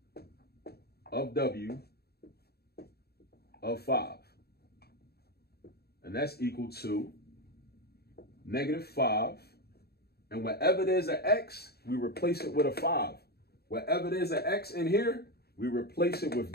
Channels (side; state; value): right; late; 0.46 ms